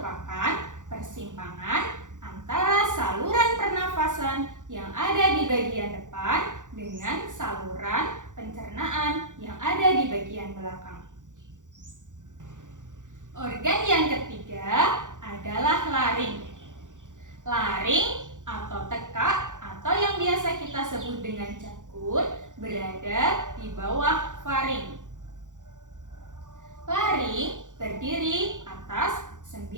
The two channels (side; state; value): left; late; 0.86 ms